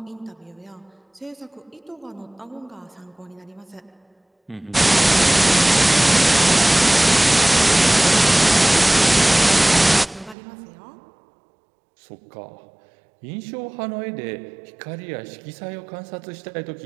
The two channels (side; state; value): left; drops out; at 10.4 s